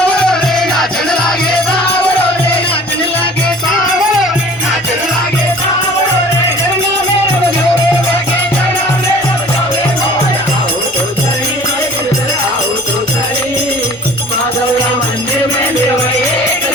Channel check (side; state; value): both; normal; correlation 0.47